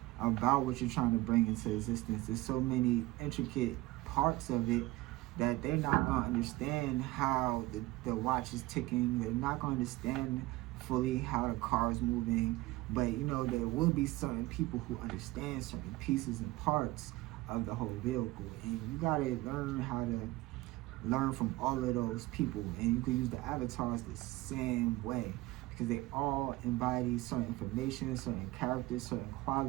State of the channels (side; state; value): left; quieter; 19.2 dB